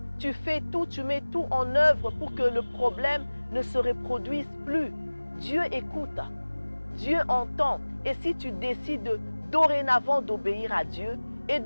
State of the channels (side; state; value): both; inverted; correlation -1.00